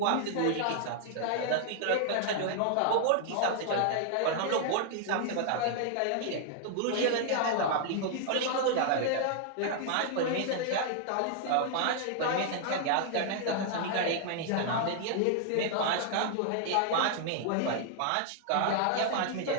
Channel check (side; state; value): both; different; correlation 0.00